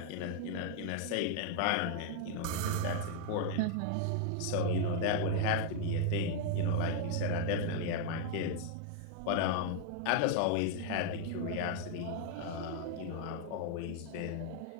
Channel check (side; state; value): both; different; correlation 0.00